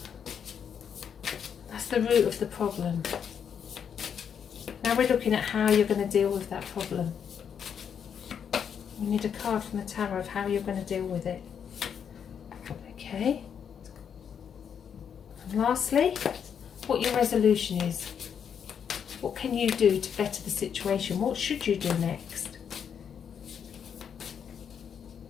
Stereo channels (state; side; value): quieter; right; 7.7 dB